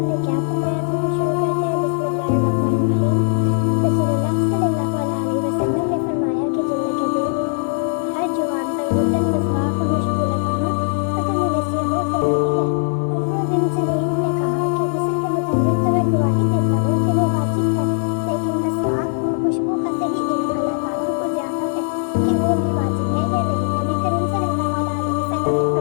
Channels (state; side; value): silent; right; digital silence